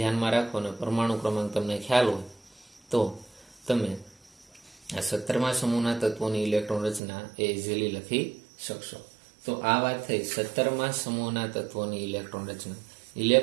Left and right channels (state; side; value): drops out; left; at 7.0 s